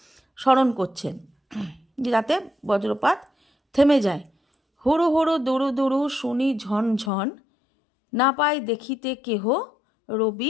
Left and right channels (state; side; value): drops out; right; at 7.1 s